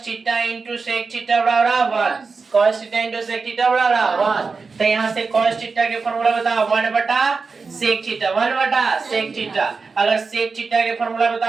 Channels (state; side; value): quieter; left; 4.6 dB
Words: theta into sec theta बराबर 1, cos theta into sec theta बराबर 1। तो यहाँ से cos थीटा के फॉर्मूला बताओ 1 बटा sec थीटा, 1 बटा sec थीटा। अगर sec थीटा के फॉर्मूला